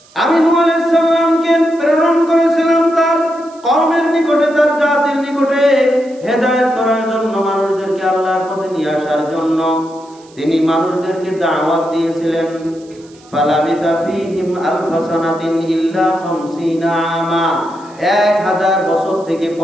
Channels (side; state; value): right; noise; hiss, 27 dB below the sound